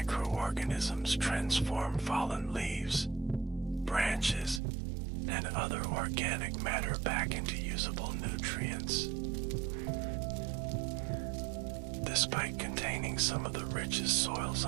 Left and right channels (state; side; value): drops out; left; at 4.6 s